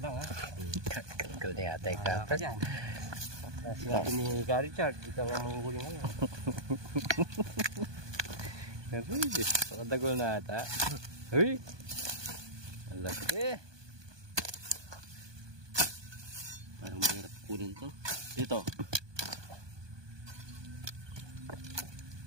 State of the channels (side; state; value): left; late; 1.2 ms